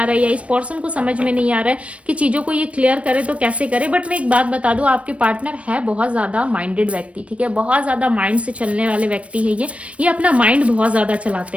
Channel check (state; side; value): late; left; 0.063 ms